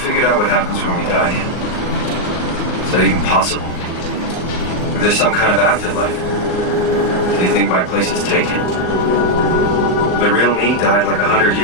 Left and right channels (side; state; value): right; late; 38 ms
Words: out what happens when we die yet? Is that even possible? If there's some kind of afterlife, do you think my place is taken? The real me died like 100